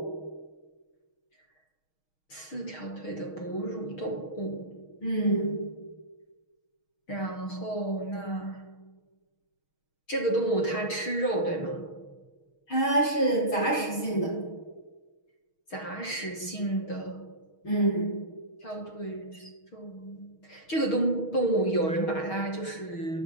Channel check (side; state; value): right; late; 6.4 ms